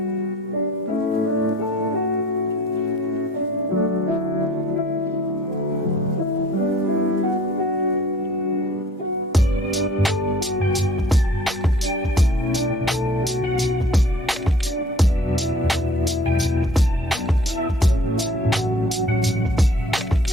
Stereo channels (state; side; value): normal; both; correlation 0.50